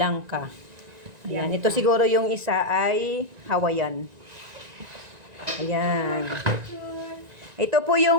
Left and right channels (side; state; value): left; late; 1.9 ms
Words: Ayan, ito siguro yung isa ay Hawaiian. Ayan. Ito po